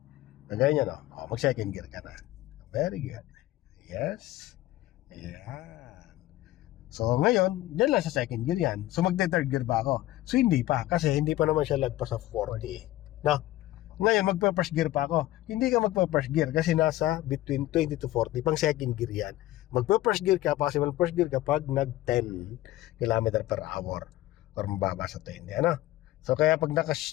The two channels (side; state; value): right; quieter; 16.0 dB